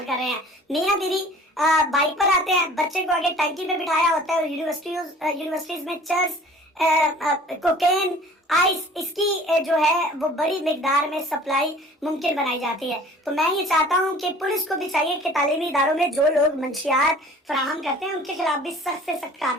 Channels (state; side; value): normal; both; correlation 0.48